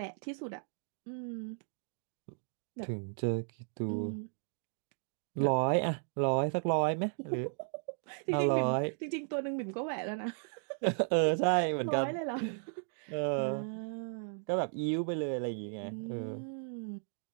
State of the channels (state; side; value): silent; left; digital silence